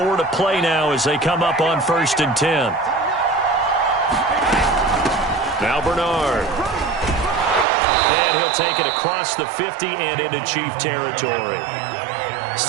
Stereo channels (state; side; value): drops out; left; at 7.7 s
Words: to play now as they come up on 1st and 10. Now Bernard. And he'll take it across the 50 and into Chief territory.